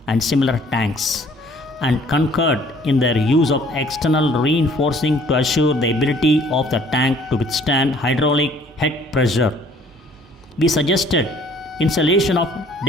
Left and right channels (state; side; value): normal; both; correlation 0.57